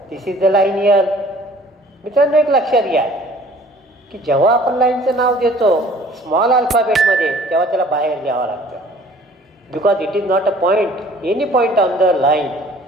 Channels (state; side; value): normal; both; correlation 0.52